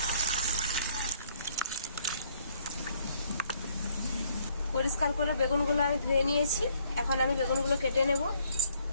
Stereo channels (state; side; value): inverted; both; correlation -0.65